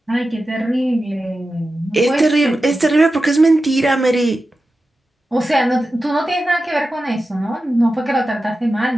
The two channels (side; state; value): both; normal; correlation 0.92